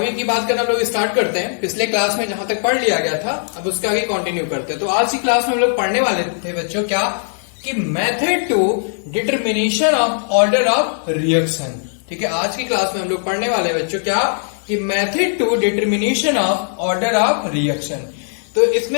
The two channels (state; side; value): silent; right; digital silence